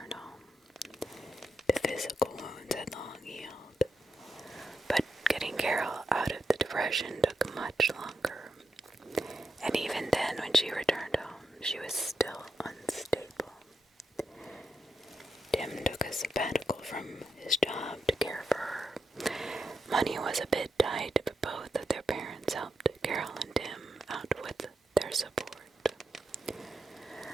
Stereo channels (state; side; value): normal; both; correlation 0.86